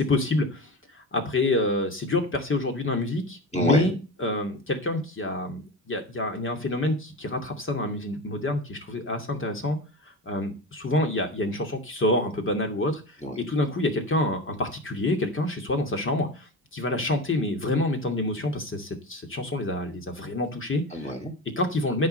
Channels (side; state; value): both; normal; correlation 0.26